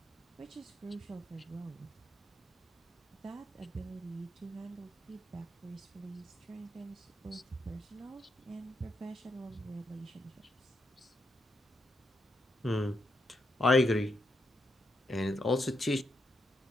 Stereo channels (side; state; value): both; normal; correlation 0.81